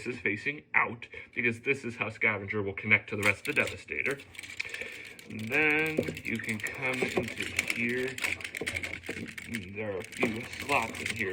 is facing out, because this is how Scavenger will connect to the rest of the Devastator. And then you can come into here. There are a few slots in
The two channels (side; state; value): both; identical; correlation 1.00